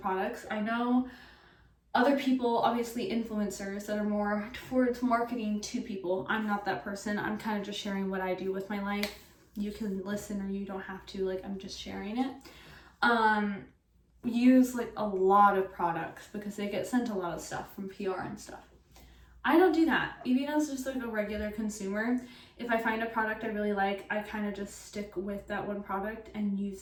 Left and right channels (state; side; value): identical; both; correlation 1.00